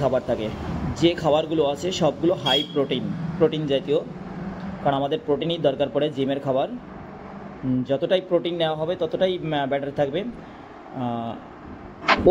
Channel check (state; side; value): identical; both; correlation 1.00